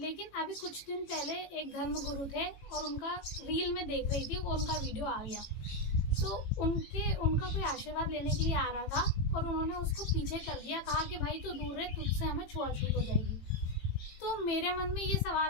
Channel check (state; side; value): late; right; 18 ms